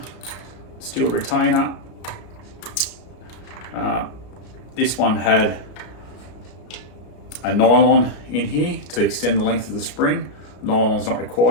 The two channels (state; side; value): late; right; 33 ms